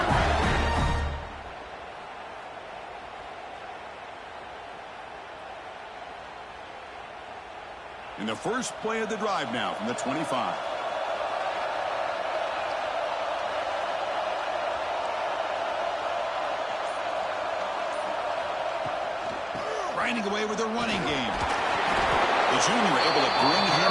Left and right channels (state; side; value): identical; both; correlation 1.00